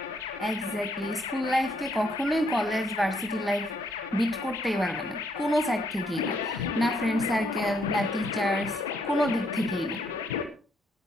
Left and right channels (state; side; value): normal; both; correlation 0.71